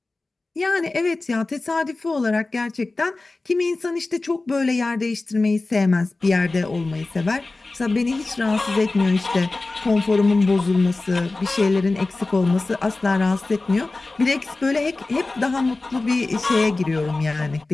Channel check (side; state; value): right; quieter; 3.3 dB